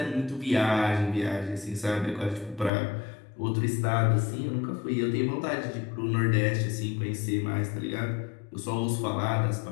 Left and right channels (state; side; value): drops out; right; at 2.7 s